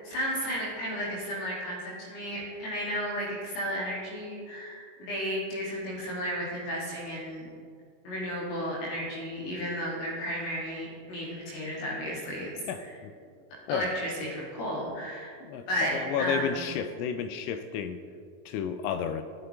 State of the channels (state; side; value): late; right; 22 ms